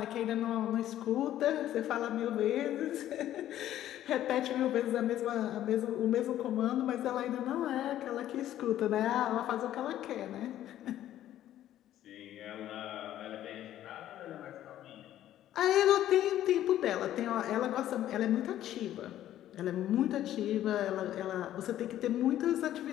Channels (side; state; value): right; quieter; 12.4 dB